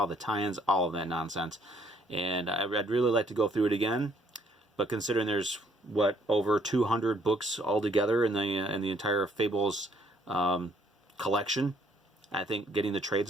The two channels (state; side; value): normal; both; correlation 0.65